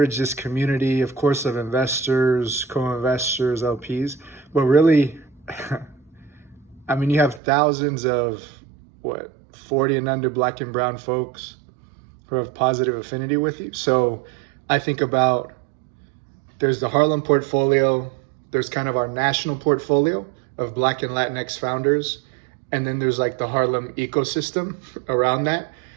this community, of course, of investors, co-investors, LPs, but really, I mean, you have thousands of 40 and under Black and brown folks who have positive affinity with you. So I think about, there's the Harlem portfolio, there's kind of our national portfolio of Black and Latinx founders, and then there's like the Harlem ecosystem around that.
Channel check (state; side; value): drops out; left; at 7.4 s